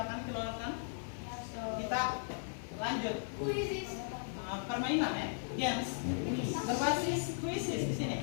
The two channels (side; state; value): right; silent; digital silence